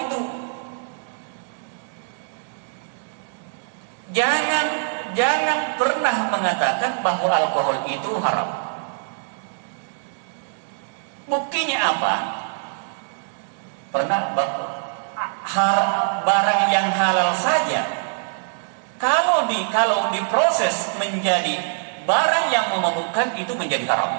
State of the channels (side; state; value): left; silent; digital silence